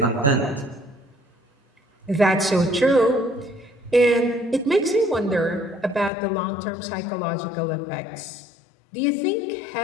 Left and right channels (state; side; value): drops out; right; at 6.1 s